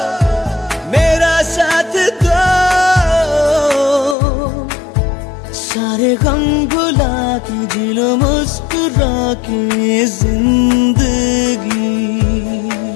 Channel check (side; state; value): right; drops out; at 4.2 s